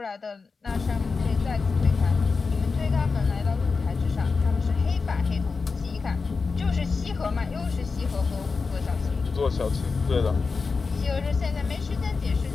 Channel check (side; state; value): right; quieter; 4.6 dB